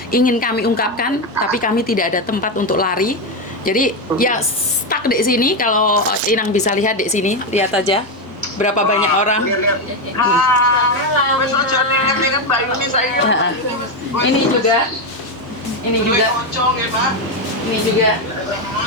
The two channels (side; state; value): both; normal; correlation 0.09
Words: ingin kami ungkapkan, tapi kami tidak ada tempat untuk lari. Jadi ya stuck di sini. Kalau Inang bisa lihat di sini, lihat aja berapa banyak orang. Ini juga.